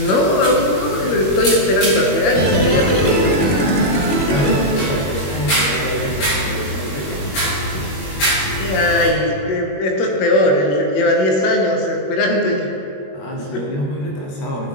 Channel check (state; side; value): late; right; 21 ms